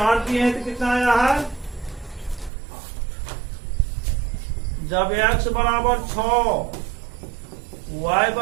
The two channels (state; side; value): drops out; left; at 2.5 s